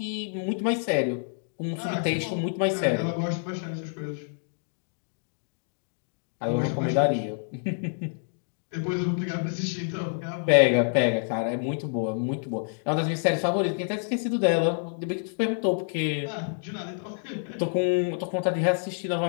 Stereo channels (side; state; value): right; silent; digital silence